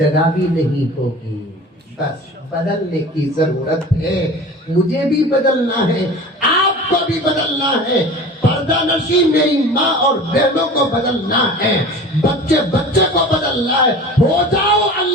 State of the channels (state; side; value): normal; both; correlation 0.38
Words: भी नहीं होगी। बस बदलने की जरूरत है, मुझे भी बदलना है, आपको भी बदलना है, पर्दा नशी मेरी माँ और बहनों को बदलना है, बच्चे बच्चे को बदलना है। हो जाओ